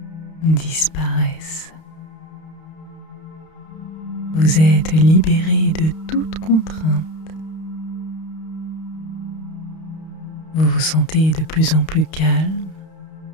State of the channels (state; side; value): late; right; 31 ms